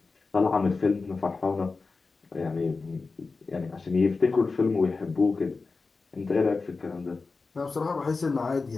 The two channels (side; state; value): right; quieter; 4.1 dB